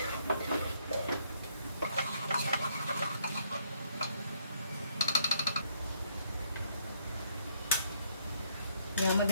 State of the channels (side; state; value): both; inverted; correlation -0.70